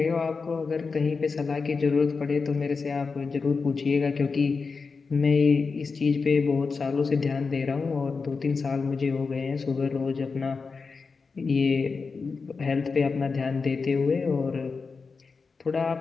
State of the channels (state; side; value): quieter; right; 4.7 dB